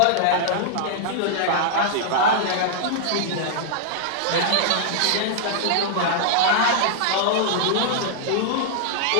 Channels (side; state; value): both; different; correlation -0.01